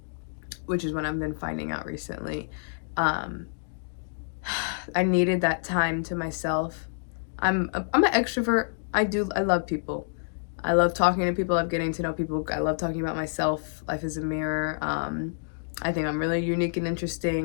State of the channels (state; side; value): silent; right; digital silence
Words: which is what I've been finding out recently. I needed that time to myself. I'm an extrovert. I love people. I love talking to people. I love getting to know people. I love talking about myself. Life is a mirror. I think I'm really unique and